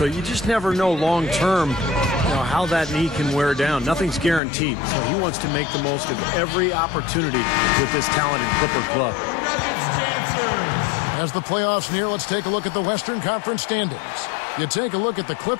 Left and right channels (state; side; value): drops out; right; at 4.4 s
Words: you just never know long term, how that knee can wear down. Nothing's guaranteed. So he wants to make the most of every opportunity with this talented Clipper club. As the playoffs near, let's take a look at the Western Conference standings. You take a look at the